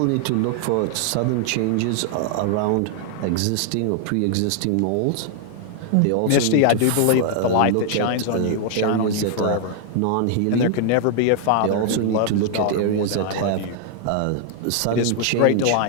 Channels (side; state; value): both; different; correlation 0.00